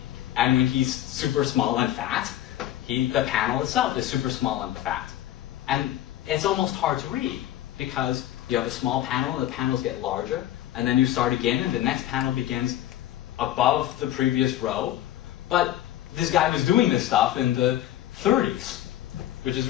And when he's super small and fat, the panel itself is super small and fat. And it's almost hard to read, because you have a small panel and the panels get larger, and then you start again and the next panel begins above the previous row. But this guy was doing this stuff in the 30s, which is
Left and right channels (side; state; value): right; quieter; 13.1 dB